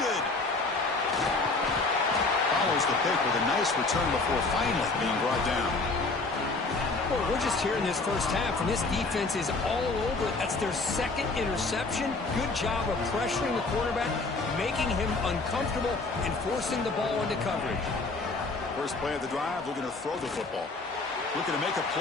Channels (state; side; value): quieter; right; 3.6 dB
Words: Follows the pick with a nice return before finally being brought down. Boy, we're just here in this first half, and this defense is all over it. That's their second interception. Good job of pressuring the quarterback, making him uncomfortable, and forcing the ball into coverage. First play of the drive, looking to throw the football. Looking to make a